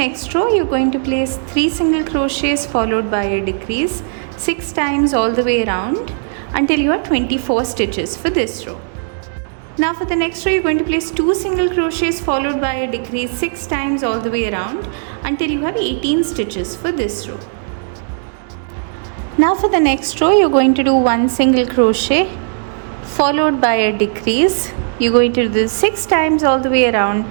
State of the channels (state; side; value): silent; left; digital silence